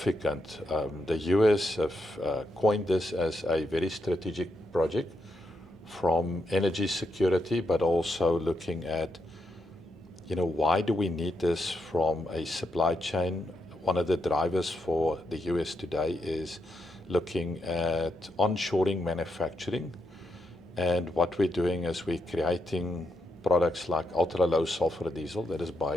The US have coined this as a very strategic project from energy security, but also looking at, you know, why do we need this from a supply chain? One of the drivers for the US today is looking at onshoring manufacturing. And what we're doing is we're creating products like ultra-low sulfur diesel that is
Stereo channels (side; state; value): both; normal; correlation 0.82